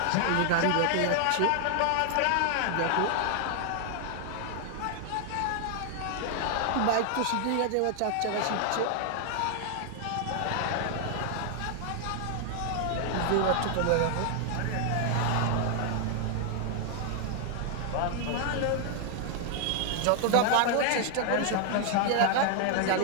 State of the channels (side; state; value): both; different; correlation 0.00